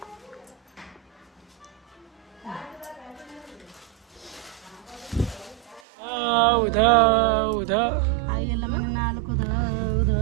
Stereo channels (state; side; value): drops out; left; at 5.8 s